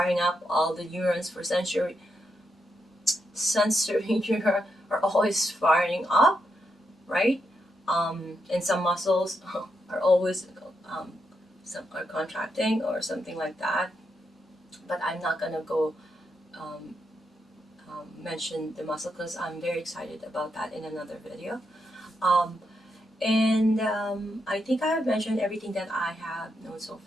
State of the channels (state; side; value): normal; both; correlation 0.82